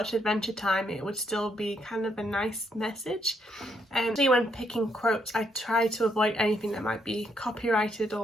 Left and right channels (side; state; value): both; normal; correlation 0.74